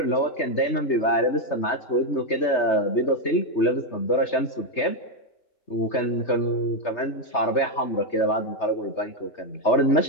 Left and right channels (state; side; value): late; right; 3.3 ms